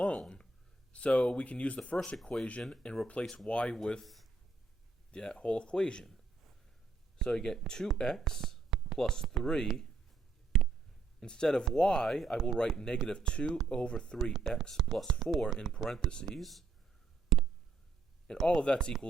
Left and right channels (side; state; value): left; quieter; 3.9 dB